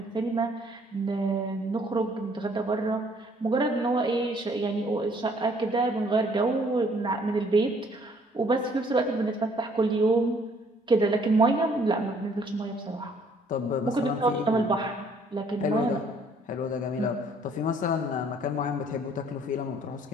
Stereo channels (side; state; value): both; normal; correlation 0.62